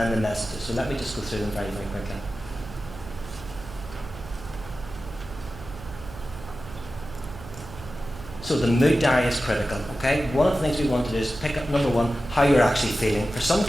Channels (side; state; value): right; noise; hum, 15 dB below the sound